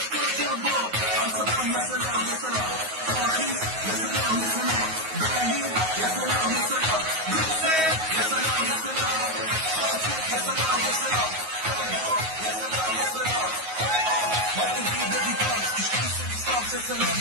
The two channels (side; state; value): left; late; 9.4 ms